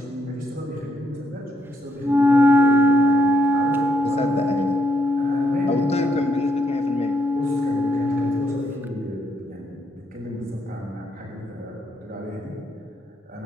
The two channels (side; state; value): both; normal; correlation 0.76